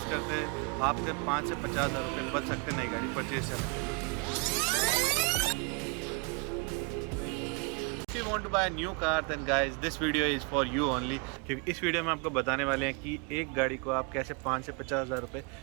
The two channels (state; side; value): quieter; left; 33.6 dB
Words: करते हैं आपके 5 से 50 हज़ार रुपये बच सकते हैं नई गाड़ी परचेज करने के। If you want to buy a new car then guys this video is for you only, क्योंकि इस वीडियो में आपको बताने वाले हैं कि एक गाड़ी को आप कैसे 5 से 50 हज़ार रुपये